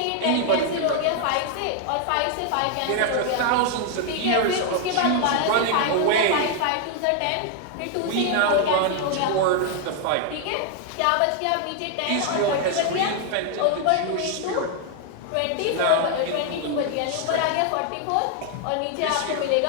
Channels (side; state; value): both; different; correlation 0.00